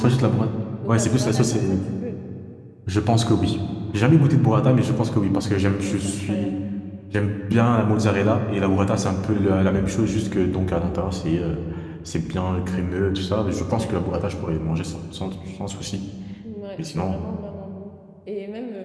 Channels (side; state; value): both; identical; correlation 1.00